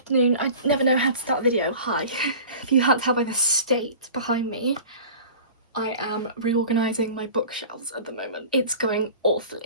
I never know how to start a video. Hi. If you can't tell by the state behind me, I am reorganising my bookshelves at the moment. It's going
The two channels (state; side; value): inverted; both; correlation -0.39